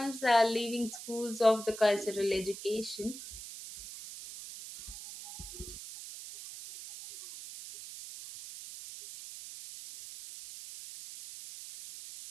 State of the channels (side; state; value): right; noise; hiss, 12 dB below the sound